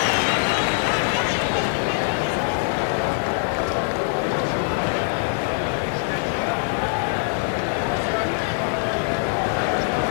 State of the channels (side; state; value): right; silent; 63 dB below the other